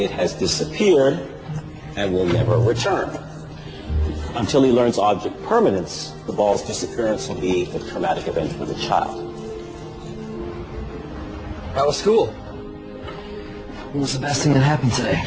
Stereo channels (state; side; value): identical; both; correlation 1.00